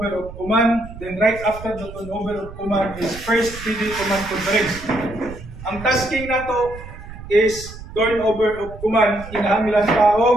of command, then right after the turnover of command is first PD command conference. Ang tasking na to is turnover of command, kinahanglan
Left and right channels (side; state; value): right; noise; rumble, 14 dB below the sound